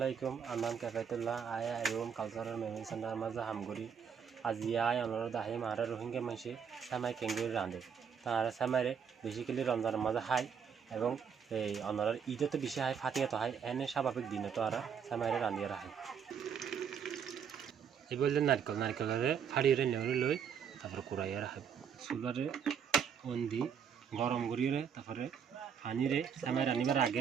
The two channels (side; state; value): left; quieter; 7.4 dB